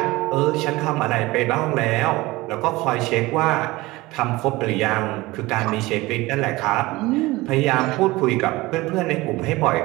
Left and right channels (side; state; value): left; quieter; 20.4 dB